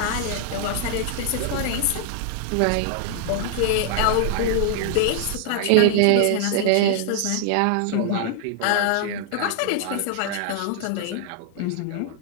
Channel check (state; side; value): different; both; correlation -0.01